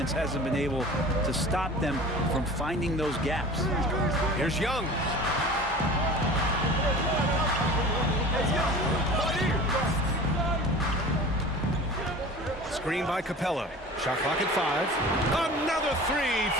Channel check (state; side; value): normal; both; correlation 0.39